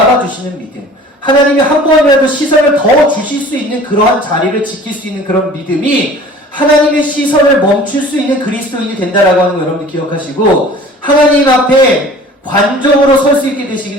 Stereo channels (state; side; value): normal; both; correlation 0.46